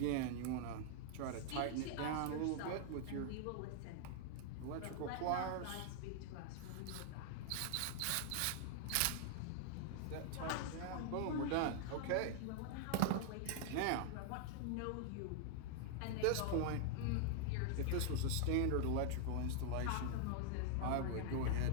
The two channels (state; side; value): different; both; correlation 0.00